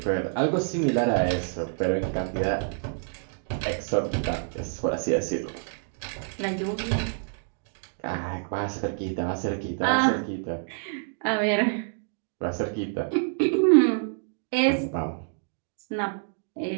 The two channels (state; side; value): silent; left; digital silence